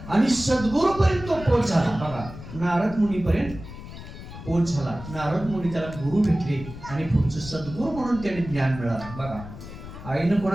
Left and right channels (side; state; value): left; noise; rumble, 13 dB below the sound